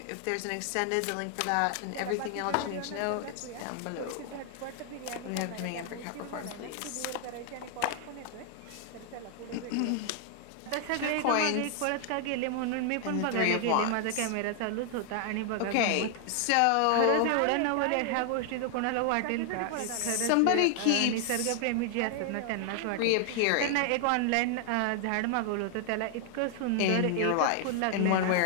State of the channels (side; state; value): both; different; correlation 0.00